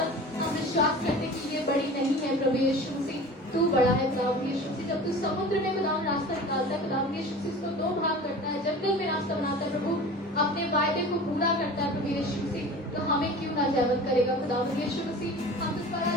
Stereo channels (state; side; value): normal; both; correlation 0.38